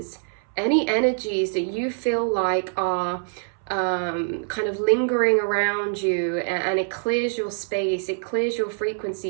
any energies that you feel like are kind of lingering around you, and it clears your space, it clears your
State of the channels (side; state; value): left; silent; 62 dB below the other